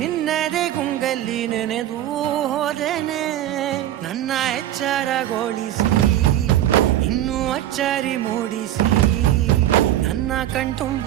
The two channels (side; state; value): left; quieter; 12.9 dB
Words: ಗುಂಗಲ್ಲಿ ನೆನೆದು ಹೋದೆನೆ. ನನ್ನ ಎಚ್ಚರಗೊಳಿಸಿ ಇನ್ನೂ ಅಚ್ಚರಿ ಮೂಡಿಸಿ, ನನ್ನ